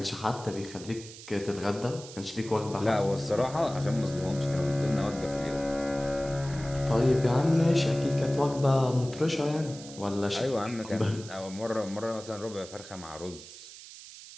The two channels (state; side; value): noise; right; hiss, 16 dB below the sound